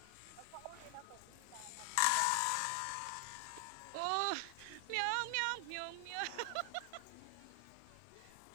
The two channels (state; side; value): different; both; correlation 0.00